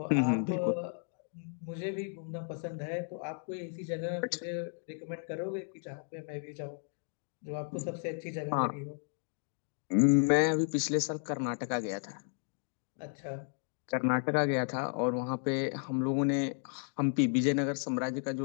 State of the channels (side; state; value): right; silent; 55 dB below the other